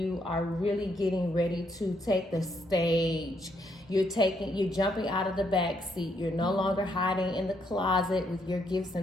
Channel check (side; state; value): both; normal; correlation 0.74